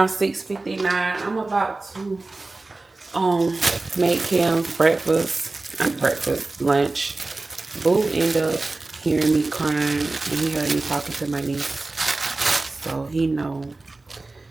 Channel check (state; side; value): quieter; left; 3.3 dB